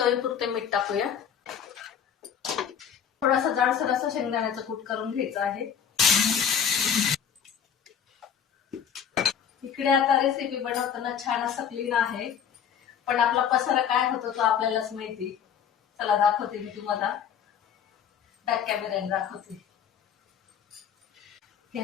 मीठ टाकूया. थोडासा जाडसर असा शेंगदाण्याचं कूट करून घ्यायचं आहे. इकडे आता रेसिपी बनवताना छान असं क्लीन आहे, पण आपला पसारा काय होतो तो आपल्यालाच माहिती. चला दाखवते मी तुम्हाला, बॅक कॅमेऱ्याने दाखवते.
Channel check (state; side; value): quieter; right; 8.1 dB